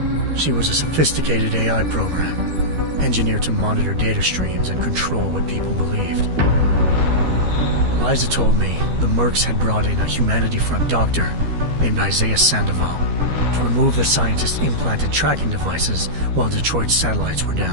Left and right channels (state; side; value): late; left; 13 ms